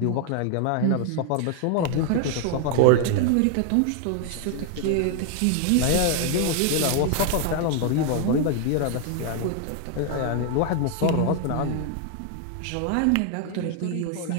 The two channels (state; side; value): different; both; correlation 0.00